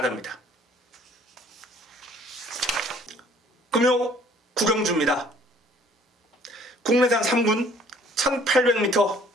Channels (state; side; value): normal; both; correlation 0.57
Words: 금요 9경주입니다. 국내산 3군 1800m